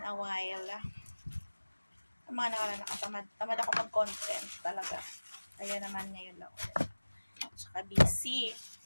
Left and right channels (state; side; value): inverted; both; correlation -1.00